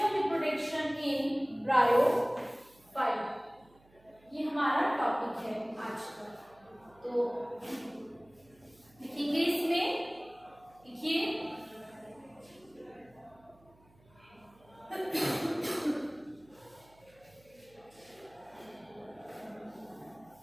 reproduction in bryophyta, ये हमारा टॉपिक है आज का। तो लिखेंगे इसमें, लिखिए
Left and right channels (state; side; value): noise; right; hum, 29 dB below the sound